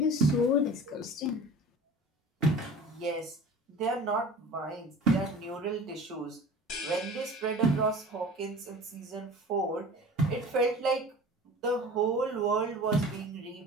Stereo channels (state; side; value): normal; both; correlation 0.40